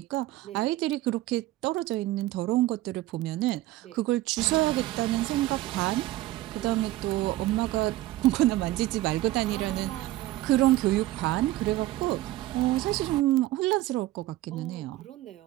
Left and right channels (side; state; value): left; quieter; 16.3 dB